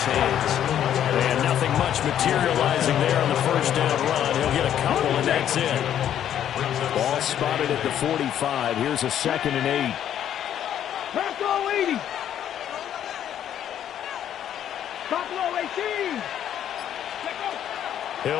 hands. And nothing much materializing there on the first down run. He'll get a couple, and that's it. Ball spotted at the 45. Here's a 2nd and 8. Buffalo 80. Buffalo 18.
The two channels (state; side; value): quieter; right; 10.3 dB